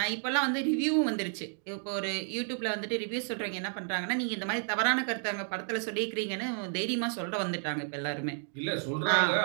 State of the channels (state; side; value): silent; left; 57 dB below the other